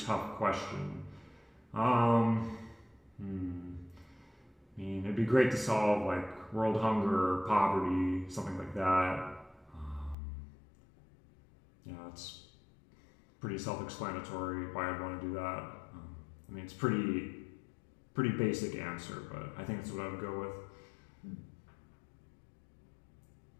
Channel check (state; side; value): drops out; right; at 10.2 s